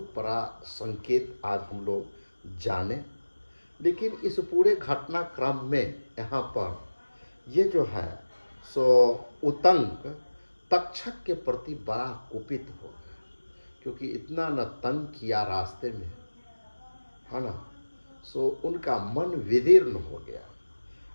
बड़ा संकेत आज हम लोग जाने। लेकिन इस पूरे घटनाक्रम में यहाँ पर ये जो है सो उतंक तक्षक के प्रति बड़ा कुपित हो गया, क्योंकि इतना न तंग किया रास्ते में, है ना। सो उनका मन विदीर्ण हो गया,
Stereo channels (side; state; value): both; inverted; correlation -1.00